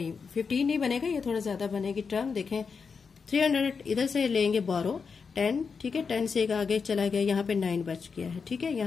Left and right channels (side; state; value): right; quieter; 5.5 dB